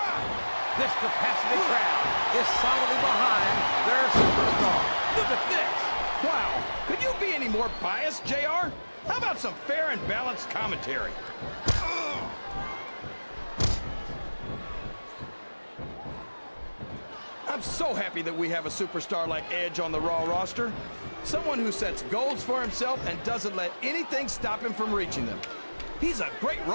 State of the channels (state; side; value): inverted; both; correlation -1.00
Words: This capacity crowd is solidly behind their superstar. Look at this. Wow, could you be any more biased, JR? How about some fair and balanced commentary? I'm so happy that we have a superstar like Edge on the Raw roster. Someone who sets goals for himself and doesn't let anything stop him from reaching them. He's a great